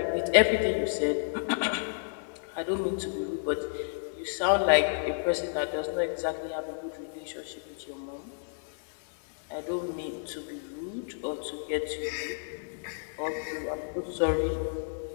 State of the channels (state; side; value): silent; right; digital silence